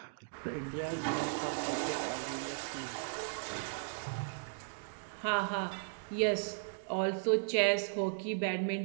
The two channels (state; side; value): silent; left; digital silence